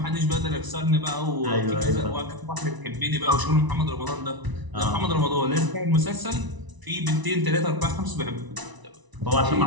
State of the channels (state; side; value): late; left; 1.0 ms